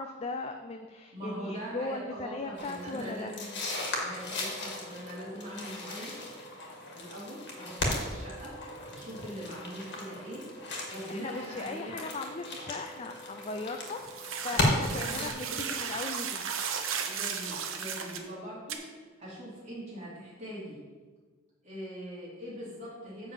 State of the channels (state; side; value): normal; both; correlation 0.25